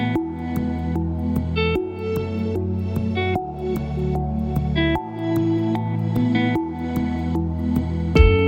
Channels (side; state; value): both; identical; correlation 1.00